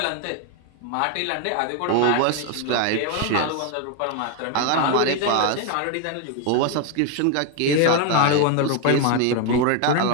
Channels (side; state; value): both; different; correlation 0.01